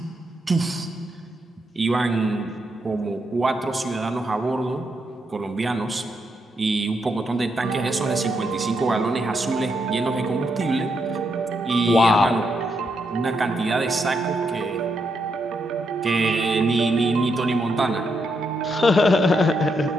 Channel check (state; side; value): normal; both; correlation 0.80